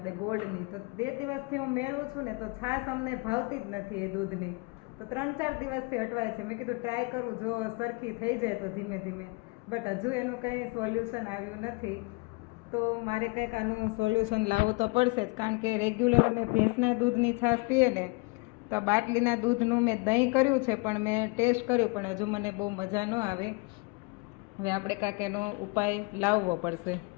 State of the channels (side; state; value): right; quieter; 28.5 dB